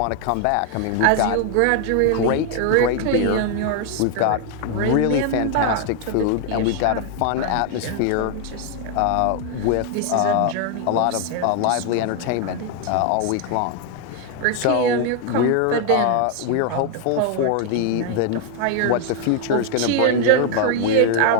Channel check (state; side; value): different; both; correlation 0.00